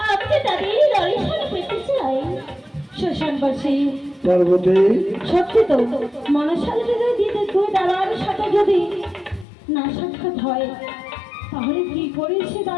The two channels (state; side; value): drops out; right; at 9.5 s